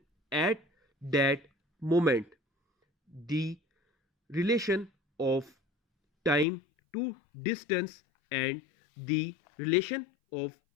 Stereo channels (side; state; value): right; drops out; at 6.5 s